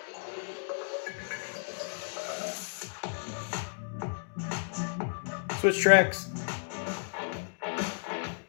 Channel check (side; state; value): right; silent; digital silence